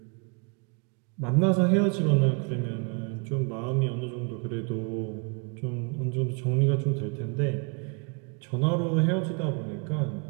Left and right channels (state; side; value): quieter; left; 34.9 dB